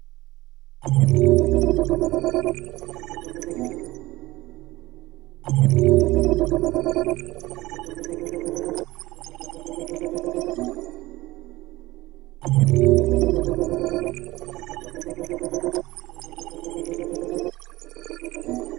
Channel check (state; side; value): quieter; left; 19.0 dB